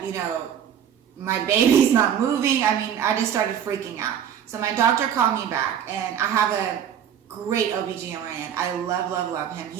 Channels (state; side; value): quieter; left; 9.0 dB